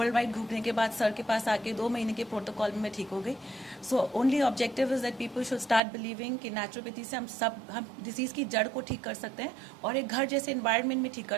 वाइड घूमने के बाद सर के पास आके 2 महीने के प्रोटोकॉल में मैं ठीक हो गई। So only objective is that people should start believing कि नेचुरोपैथी से हम डिजीज की जड़ को ठीक कर सकते हैं और एक घर जैसे एनवायरनमेंट में ठीक कर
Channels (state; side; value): drops out; left; at 5.8 s